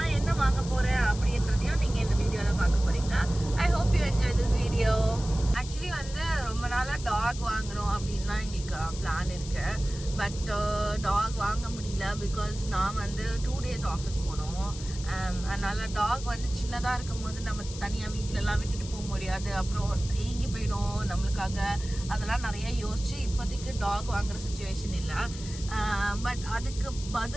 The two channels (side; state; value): left; noise; hiss, 13 dB below the sound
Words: என்ன வாங்க போறேன் அப்படின்றதையும் நீங்க இந்த வீடியோல பார்க்க போறீங்க. I hope you enjoy this video. Actually வந்து ரொம்ப நாளாக டாக் வாங்கணும் அப்படின்னு தான் எங்களுக்கு பிளான் இருக்கு. பட் டாக் வாங்க முடியல பிகாஸ் நான் வந்து 2 days ஆஃபீஸ் போனோம். அதனால டாக் வந்து சின்னதாக இருக்கும் போது நம்ம தனியாக வீட்டிலலாம் விட்டுட்டு போக முடியாது, அப்புறம் ஏங்கி போயிடும் நம்மளுக்காக. அதெல்லாம் நிறைய யோசிச்சு இப்போதைக்கு டாக் வாங்குற சுச்சுவேஷன் இல்லை. பட் அதுக்கு